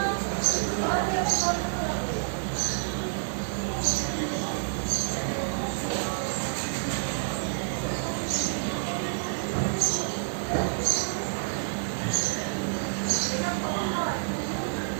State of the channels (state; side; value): silent; left; digital silence